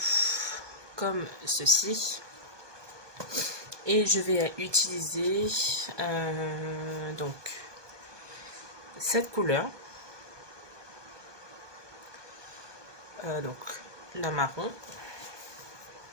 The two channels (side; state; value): left; late; 1.2 ms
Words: comme ceci et je vais utiliser donc cette couleur, donc la marron.